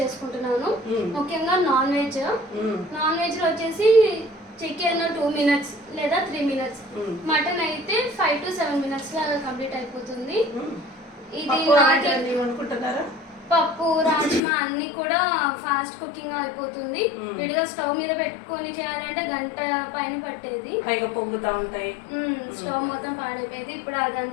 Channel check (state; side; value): drops out; right; at 14.4 s